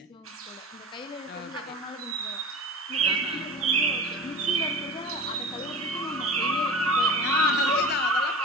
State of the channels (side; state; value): both; normal; correlation 0.34